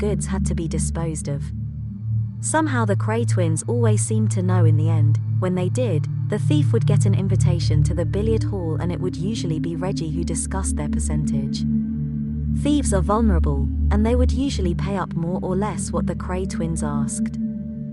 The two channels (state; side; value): identical; both; correlation 1.00